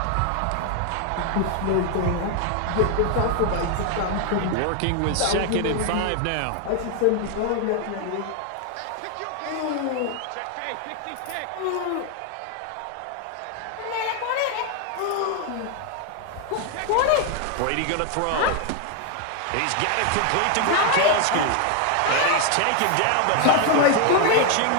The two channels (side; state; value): both; different; correlation 0.01